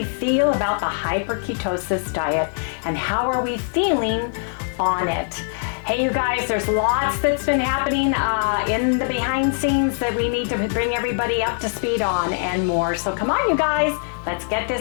feel about the hyperketosis diet? And how are we feeling on it? Hey, you guys, there's lots that's been happening in the behind scenes that we need to bring everybody up to speed on and more. So come on, you guys, let's get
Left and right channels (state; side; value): silent; right; digital silence